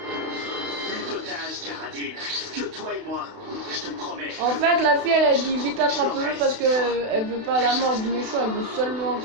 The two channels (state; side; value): late; left; 32 ms